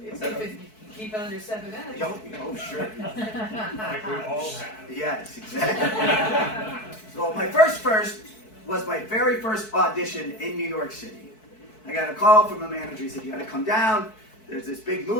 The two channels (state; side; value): late; right; 4.6 ms